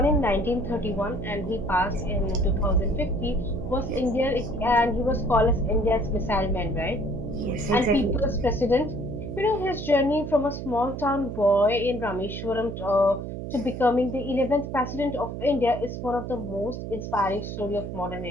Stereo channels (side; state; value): right; noise; hum, 7 dB below the sound